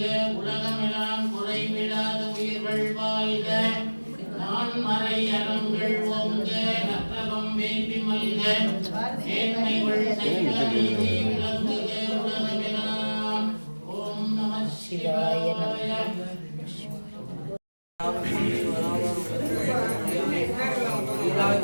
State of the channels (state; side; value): inverted; both; correlation -1.00